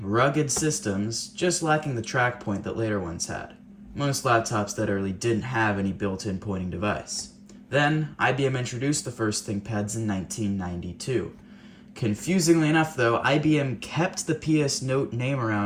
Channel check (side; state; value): both; identical; correlation 1.00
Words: rugged systems, just lacking the track point that later ones had. Most laptops that early didn't have any built-in pointing device. Then, IBM introduced the first ThinkPads in 1992. Confusingly enough though, IBM kept the PS Note name